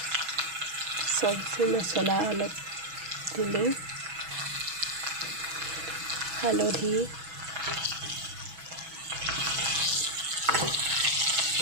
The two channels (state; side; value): late; left; 6.2 ms